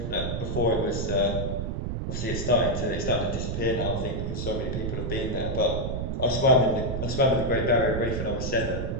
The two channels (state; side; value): noise; right; rumble, 2 dB below the sound